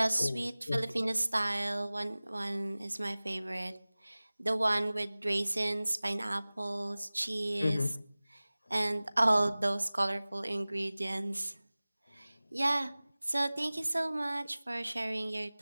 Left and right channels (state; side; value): inverted; both; correlation -0.99